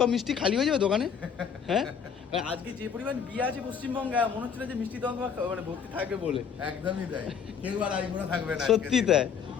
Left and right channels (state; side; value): quieter; right; 7.1 dB